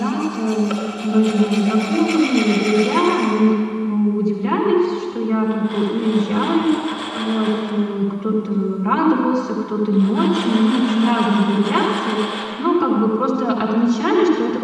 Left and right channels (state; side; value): identical; both; correlation 1.00